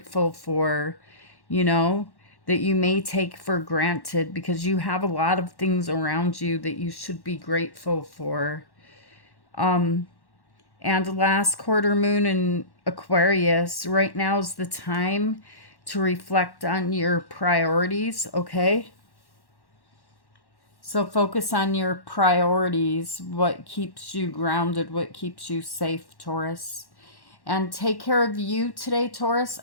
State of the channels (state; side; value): late; right; 1.1 ms